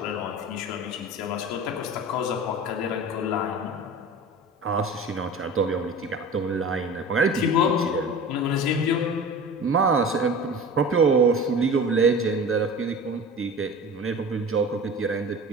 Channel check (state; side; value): normal; both; correlation 0.36